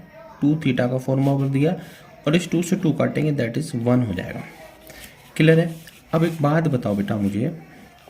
2 थीटा का फॉर्मूला बदल दिया और इस 2 से 2 काटेंगे, दैट इज 1 हो जाएगा। क्लियर है। अब एक बात बताओ बेटा, मुझे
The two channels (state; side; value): identical; both; correlation 1.00